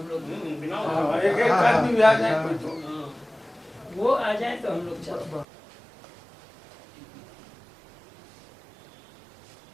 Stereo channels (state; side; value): drops out; left; at 5.5 s